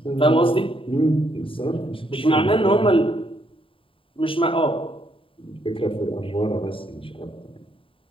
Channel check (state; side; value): late; right; 0.26 ms